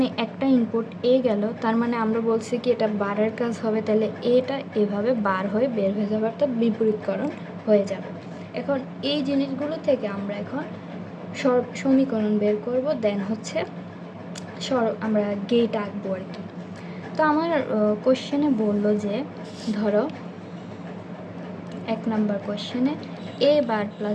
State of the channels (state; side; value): identical; both; correlation 1.00